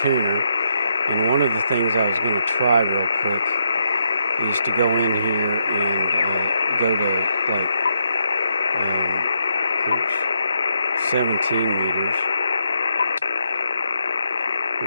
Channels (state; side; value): inverted; both; correlation -0.79